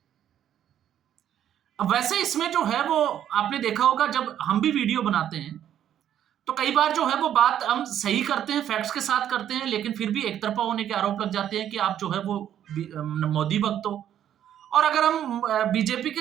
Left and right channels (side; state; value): left; quieter; 10.5 dB